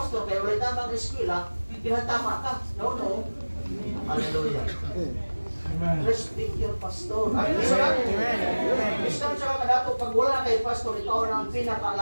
kaya wala tamang eskwela, tinatama ka. No. Hallelujah. Respect your pastor. Ay, may sunan. Isang siya kadato, pag wala kay pastor, ikaw ang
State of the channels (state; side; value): inverted; both; correlation -1.00